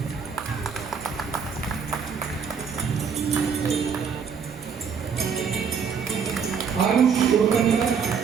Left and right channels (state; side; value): quieter; left; 6.5 dB